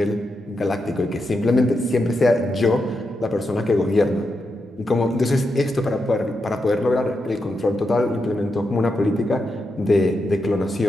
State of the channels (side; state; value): both; normal; correlation 0.85